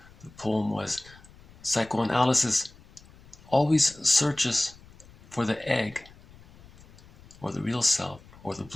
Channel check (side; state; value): left; noise; rumble, 23 dB below the sound